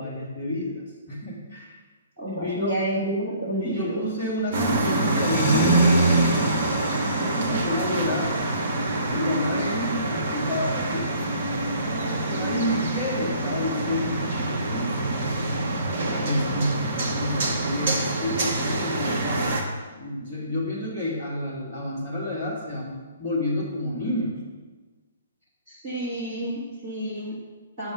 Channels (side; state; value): both; inverted; correlation -0.56